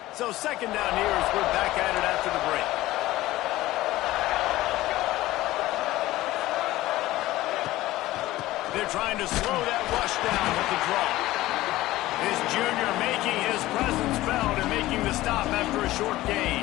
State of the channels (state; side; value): quieter; right; 16.8 dB